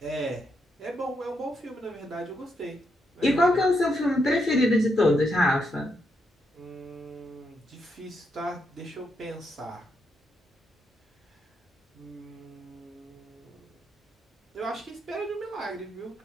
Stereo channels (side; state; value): both; normal; correlation 0.80